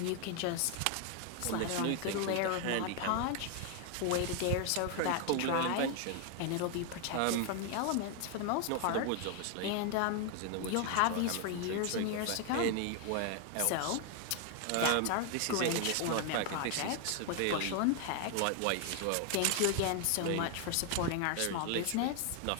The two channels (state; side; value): different; both; correlation 0.01